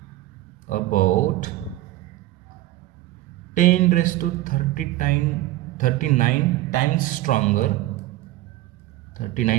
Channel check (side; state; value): left; quieter; 16.0 dB